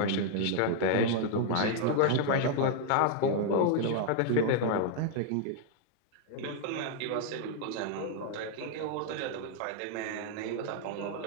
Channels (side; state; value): both; different; correlation 0.00